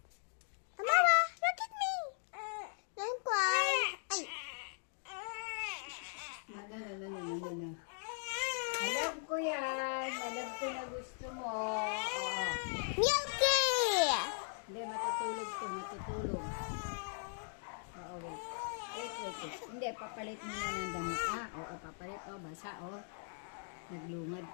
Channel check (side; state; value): right; silent; digital silence